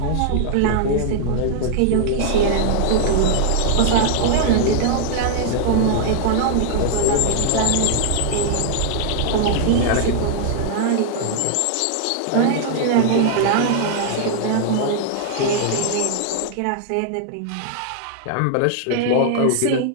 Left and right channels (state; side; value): different; both; correlation -0.01